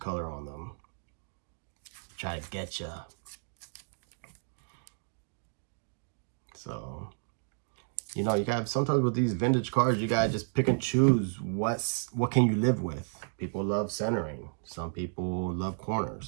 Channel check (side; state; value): left; silent; digital silence